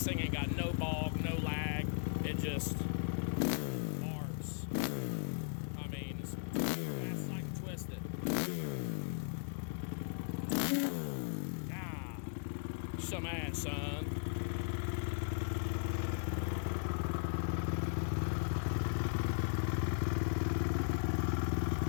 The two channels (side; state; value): right; silent; 53 dB below the other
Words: thing ain't got no bog, no lag, it just arcs. I mean, it's like twisted. Ah, some ass, son.